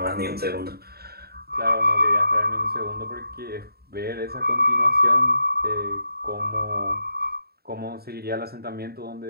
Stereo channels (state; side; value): late; left; 0.45 ms